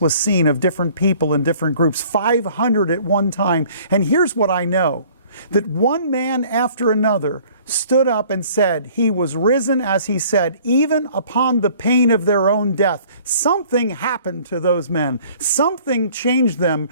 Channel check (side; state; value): both; inverted; correlation -0.54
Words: was seen of different people in different groups, 500 at one time. And here's what I know, that one man after another stood up and said, he was risen as he said, even upon the pain of their own death. Something happened to those men. Something changed them